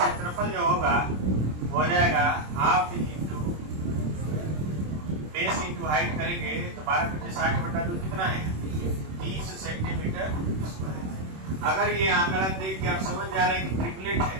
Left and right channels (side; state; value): left; late; 26 ms